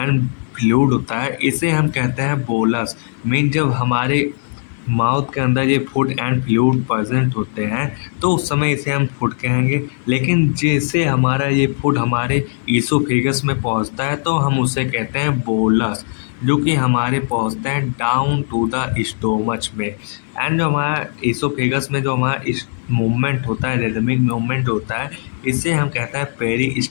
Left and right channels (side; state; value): right; silent; digital silence